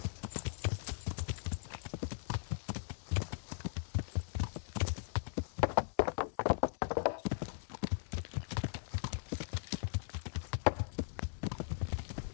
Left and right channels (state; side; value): silent; right; digital silence